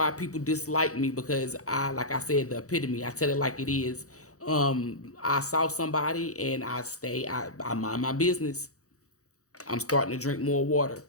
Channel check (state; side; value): late; right; 0.65 ms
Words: people dislike me, because like I said, the epitome. I tell it like it is. I saw somebody and I mind my business. I'm starting to drink more water.